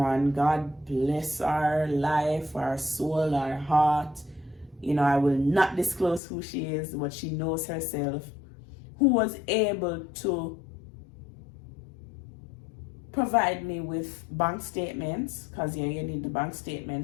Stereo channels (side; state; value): right; drops out; at 6.2 s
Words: God bless her life, her soul, her heart. You know, I will not disclose who she is, but she knows herself, who was able to provide me with bank statements, because yeah, you need the bank